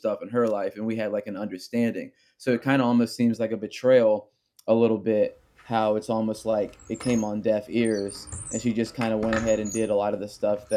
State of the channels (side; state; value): both; identical; correlation 1.00